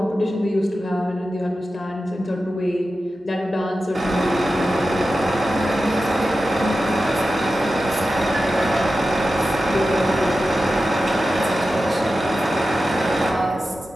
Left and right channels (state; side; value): normal; both; correlation 0.93